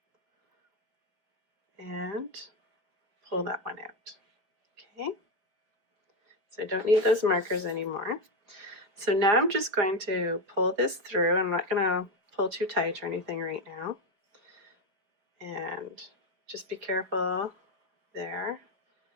and pull that one out. Okay, so I don't need those markers anymore. So now I'm just going to pull this through. I'm not going to pull too tight or anything right now. And just be careful there.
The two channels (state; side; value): late; left; 5.0 ms